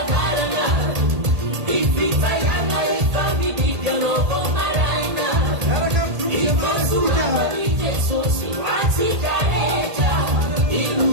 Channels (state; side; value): late; left; 1.8 ms